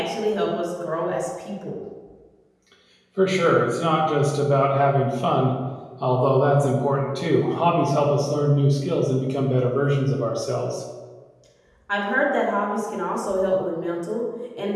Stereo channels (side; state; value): both; identical; correlation 1.00